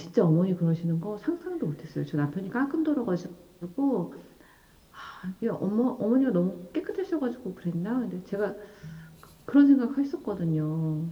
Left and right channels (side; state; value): both; identical; correlation 1.00